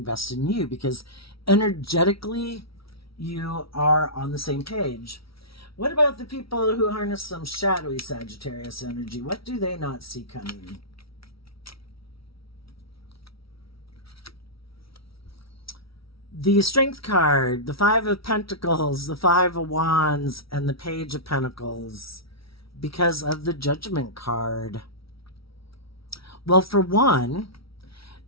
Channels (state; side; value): late; right; 0.75 ms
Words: in you, because energetically you are on the same page. What about the people who harness some shadowy Sagittarius energy? What do they not see coming? The Strength card, the Five of Pentacles, the Five of Wands, and the Page of Pentacles, because of the Judgment card. Well, for one,